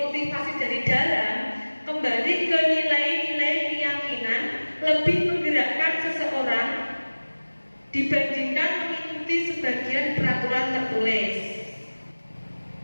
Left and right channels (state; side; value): inverted; both; correlation -1.00